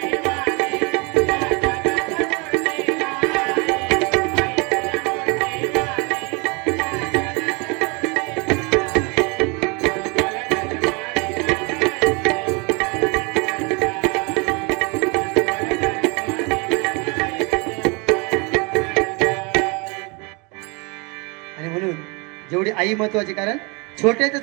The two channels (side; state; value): left; quieter; 30.0 dB